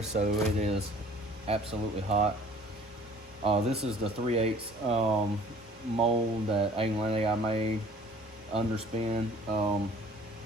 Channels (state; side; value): normal; both; correlation 0.51